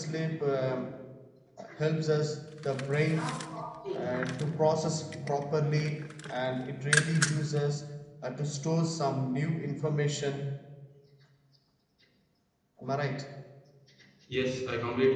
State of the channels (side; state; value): both; identical; correlation 1.00